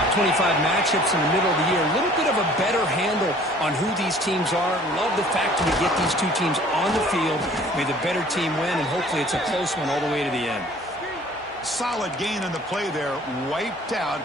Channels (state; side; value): normal; both; correlation 0.52